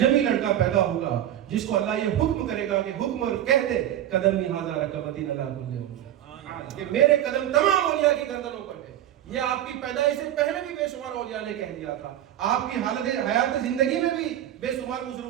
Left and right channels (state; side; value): quieter; left; 11.9 dB